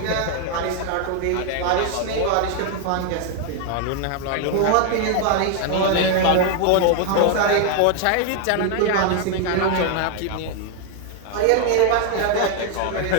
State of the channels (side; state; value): both; different; correlation 0.01